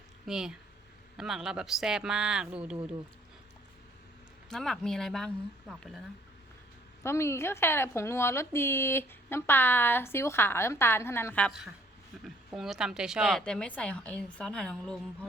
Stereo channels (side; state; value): both; normal; correlation 0.62